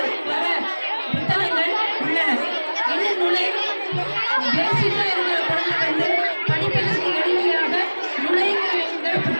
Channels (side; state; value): both; inverted; correlation -1.00